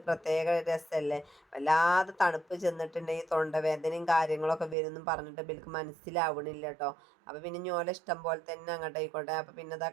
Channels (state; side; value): drops out; left; at 4.8 s